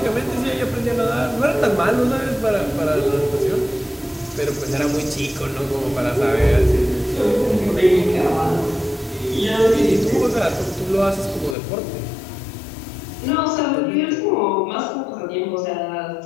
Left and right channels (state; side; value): drops out; right; at 11.6 s